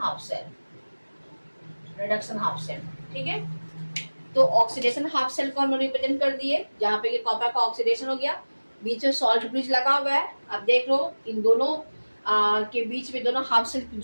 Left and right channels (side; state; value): both; inverted; correlation -1.00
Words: half cell, reduction half cell, ठीक है। तो ऑक्सीडेशन हाफ सेल को हम लोग रिप्रेजेंट कर दिए, जहां पे ये कॉपर का ऑक्सीडेशन हो गया, बीच में सॉल्ट ब्रिज लगा हुआ है। अब देख लो इन दोनों के बीच में दोनों हाफ सेल